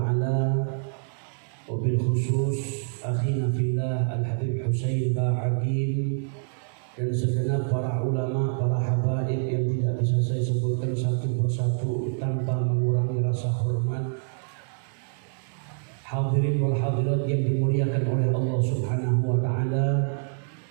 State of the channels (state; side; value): silent; left; digital silence